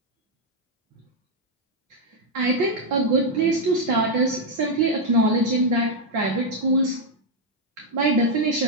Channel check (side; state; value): both; normal; correlation 0.01